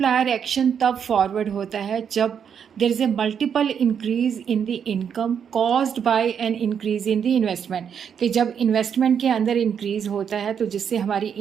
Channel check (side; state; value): left; quieter; 7.7 dB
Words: एक्शन तब फॉरवर्ड होता है जब there is a multiple increase in the income caused by an increase in the investment. कि जब इन्वेस्टमेंट के अंदर इंक्रीज़ होता है तो जिससे हमारी